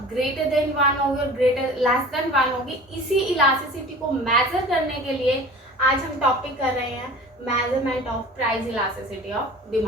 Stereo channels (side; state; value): both; normal; correlation 0.41